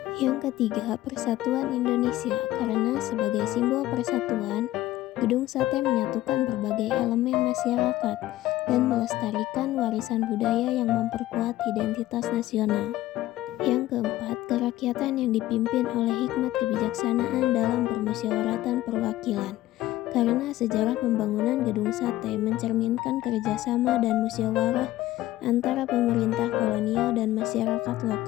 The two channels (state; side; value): quieter; right; 15.4 dB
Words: Yang ketiga, persatuan Indonesia, karena sebagai simbol persatuan, Gedung Sate menyatukan berbagai elemen masyarakat dan melestarikan warisan budaya yang memperkuat identitas nasional. Yang keempat, kerakyatan yang dipimpin oleh hikmat kebijaksanaan dalam permusyawaratan perwakilan, karena sejarah pembangunan Gedung Sate mencerminkan kerjasama dan musyawarah antara pemerintah kolonial dan masyarakat